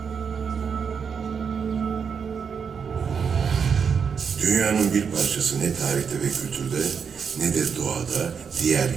Dünyanın bir parçası ne tarihte ve kültürde ne de doğada diğer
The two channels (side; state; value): left; quieter; 6.5 dB